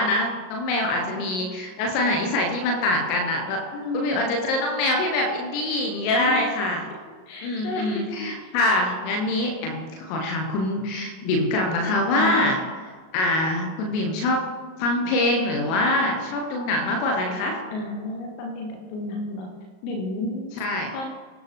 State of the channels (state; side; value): late; right; 38 ms